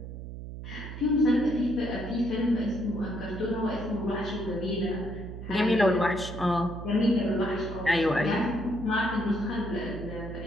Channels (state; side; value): noise; right; hum, 9 dB below the sound